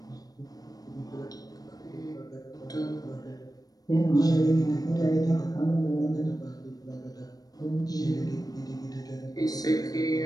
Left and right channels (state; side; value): late; right; 0.18 ms